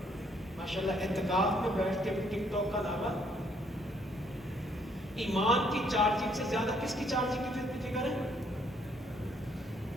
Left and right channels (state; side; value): normal; both; correlation 0.68